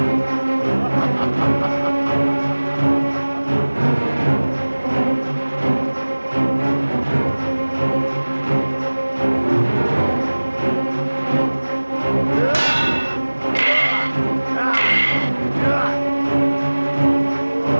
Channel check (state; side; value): inverted; both; correlation -1.00